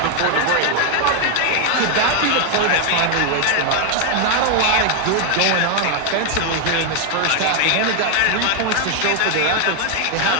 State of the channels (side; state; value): both; different; correlation 0.00